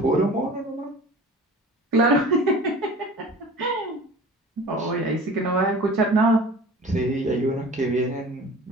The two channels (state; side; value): normal; both; correlation 0.41